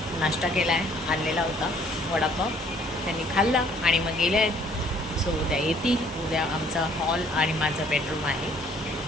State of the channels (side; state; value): both; normal; correlation 0.61